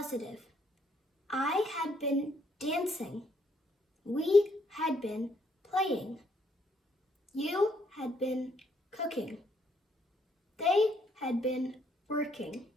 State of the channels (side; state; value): both; normal; correlation 0.71